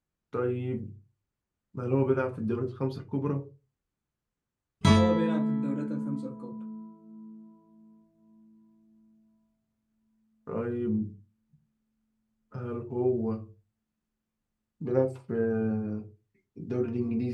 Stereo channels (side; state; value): both; identical; correlation 1.00